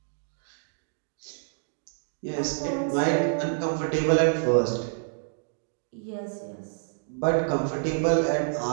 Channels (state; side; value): silent; left; digital silence